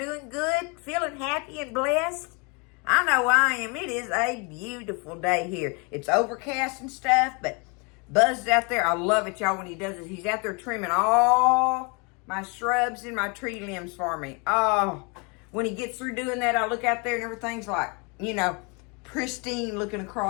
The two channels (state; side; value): quieter; right; 31.7 dB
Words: good? Feeling happy and blessed? I know I am. It is a beautiful day here. It's overcast and stuff, but Buzz is out there. I love it, y'all, when he does it. He's out there trimming all my shrubs and my tree limbs for me. Oh, when he gets through doing that, I look out there and everything's like, pristine looking